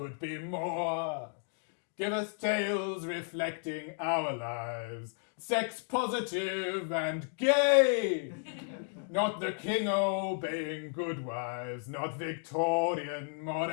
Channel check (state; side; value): silent; right; 56 dB below the other